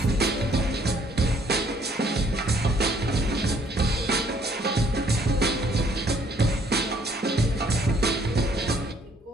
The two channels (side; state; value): both; normal; correlation 0.63